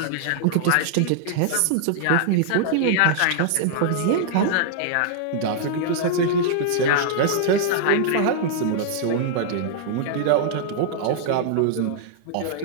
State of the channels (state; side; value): different; both; correlation -0.01